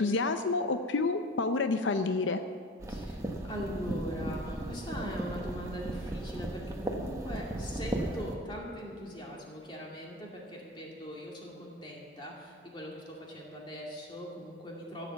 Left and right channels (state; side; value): normal; both; correlation 0.34